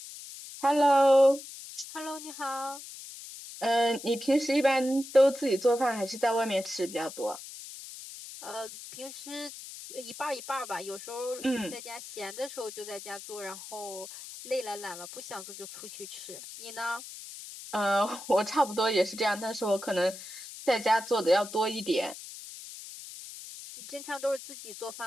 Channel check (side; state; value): left; noise; hiss, 13 dB below the sound